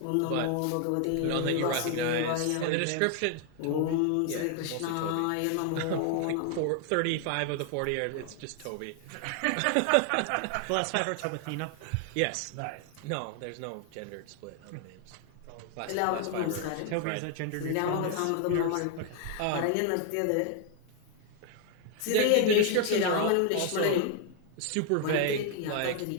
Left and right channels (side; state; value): both; different; correlation 0.00